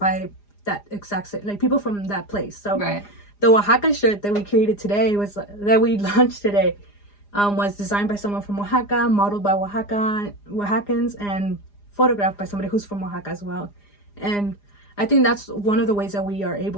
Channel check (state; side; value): late; right; 4.9 ms